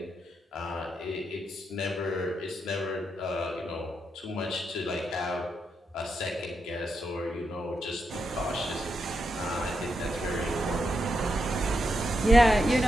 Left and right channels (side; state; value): both; normal; correlation 0.83